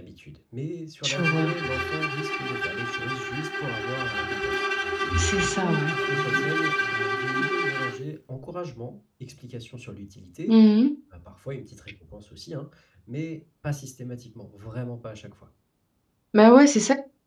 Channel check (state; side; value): identical; both; correlation 1.00